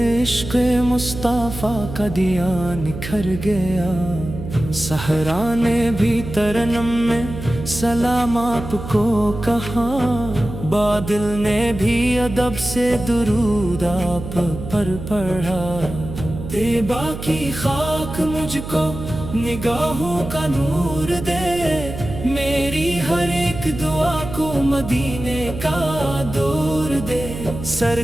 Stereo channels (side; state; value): right; noise; hum, 9 dB below the sound